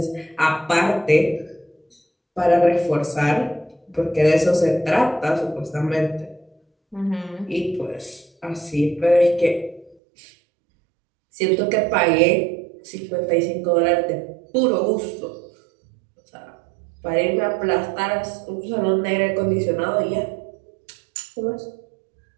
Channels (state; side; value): drops out; left; at 10.0 s